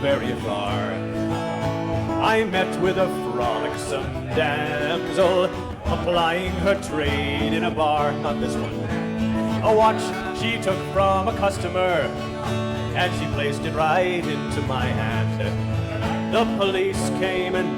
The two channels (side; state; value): both; identical; correlation 1.00